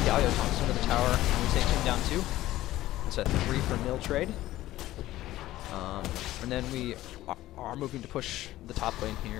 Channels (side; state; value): right; quieter; 15.4 dB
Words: Galio tosses into the tower, and we take him down 2. It's a 3-for-0 trade. And then we are moving to push the top lane